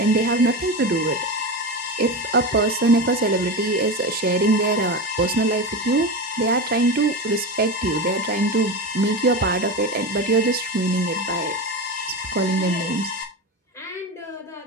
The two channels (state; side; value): normal; both; correlation 0.22